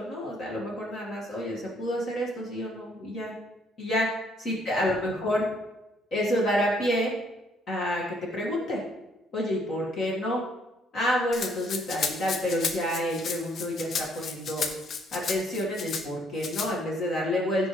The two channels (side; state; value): both; normal; correlation 0.66